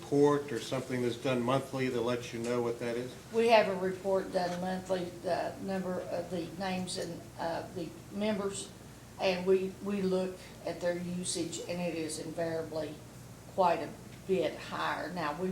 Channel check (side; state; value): both; identical; correlation 1.00